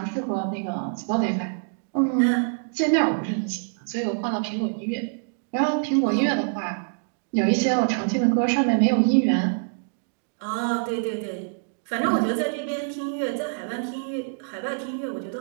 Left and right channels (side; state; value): left; silent; digital silence